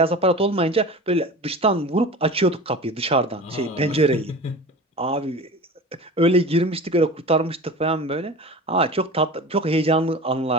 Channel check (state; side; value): normal; both; correlation 0.34